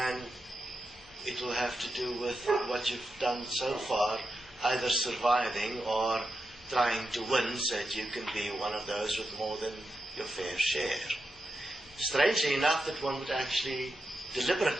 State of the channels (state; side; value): normal; both; correlation 0.88